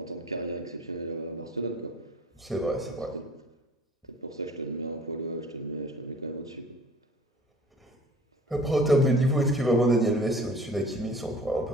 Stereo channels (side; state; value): both; normal; correlation 0.48